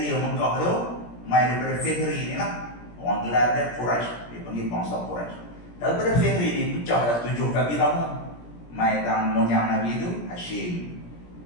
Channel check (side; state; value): right; late; 17 ms